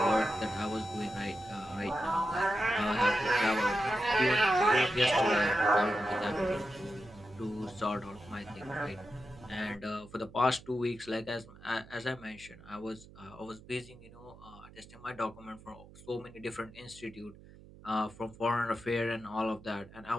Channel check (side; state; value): right; noise; hum, 20 dB below the sound